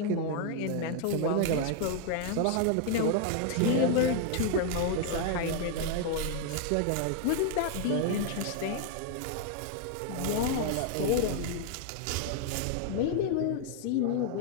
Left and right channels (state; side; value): different; both; correlation 0.00